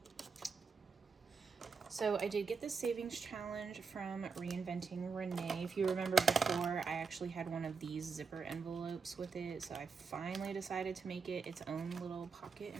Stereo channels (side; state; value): left; quieter; 5.3 dB